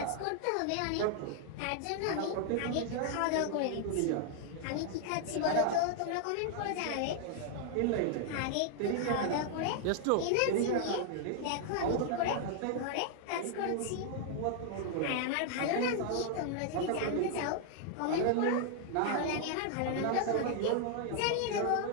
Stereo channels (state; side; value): different; both; correlation 0.00